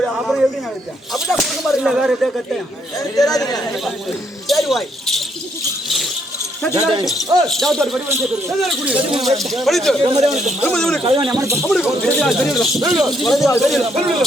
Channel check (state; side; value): normal; both; correlation 0.72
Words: அப்புறம் எப்படி நினைச்சேன் அப்படிதான் கொடுக்க மாதிரி இல்லை. வேற எதாவது கட்டேன் சரி வாய்